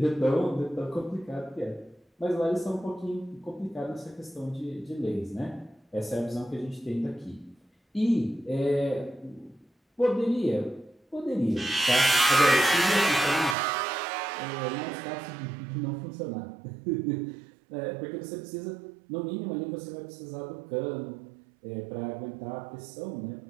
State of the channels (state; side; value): drops out; left; at 13.6 s